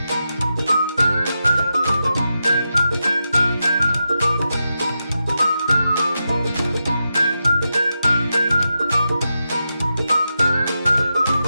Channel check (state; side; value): inverted; both; correlation -0.89